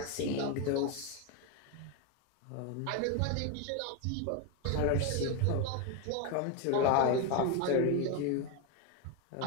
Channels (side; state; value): both; different; correlation 0.02